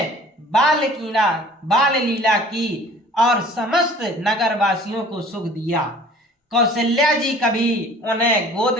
बाल लीला की और समस्त नगरवासियों को सुख दिया। कौशल्या जी कभी उन्हें गोद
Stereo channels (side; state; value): both; normal; correlation 0.49